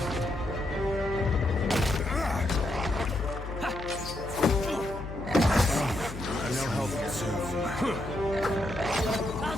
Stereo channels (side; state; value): left; noise; hum, 11 dB below the sound